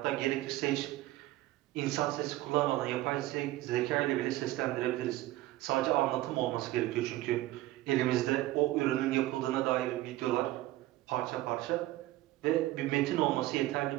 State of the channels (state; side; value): quieter; left; 16.7 dB